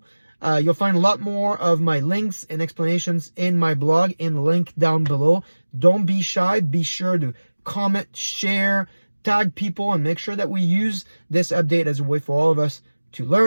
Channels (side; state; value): both; inverted; correlation -1.00